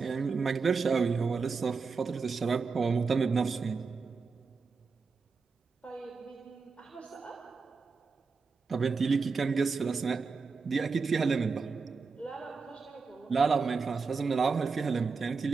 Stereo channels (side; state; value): left; quieter; 4.8 dB